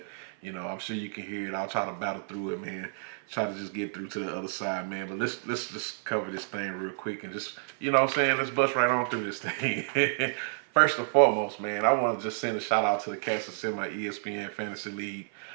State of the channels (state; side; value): silent; left; 55 dB below the other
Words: I'm sure you can hear it. I'll try to battle through it, man. Try to just get through to the other side, man. But let's just cover this thing real quick and just, what I'm saying, let's bust right on through this thing. First and foremost, man, I want to just send a shout out to the cats that's in my ESPN Fantasy League.